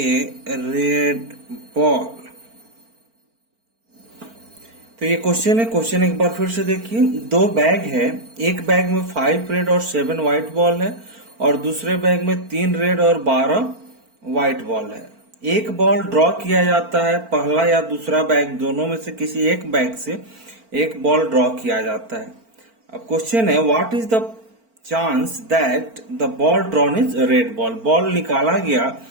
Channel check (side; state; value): left; late; 4.4 ms